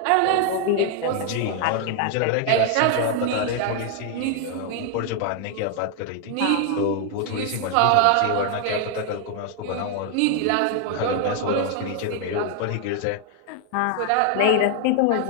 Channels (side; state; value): both; different; correlation 0.00